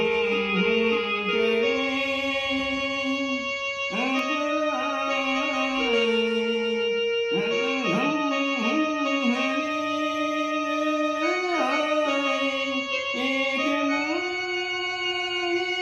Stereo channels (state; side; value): identical; both; correlation 1.00